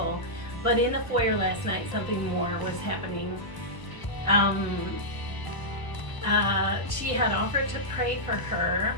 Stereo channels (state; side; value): late; right; 1.0 ms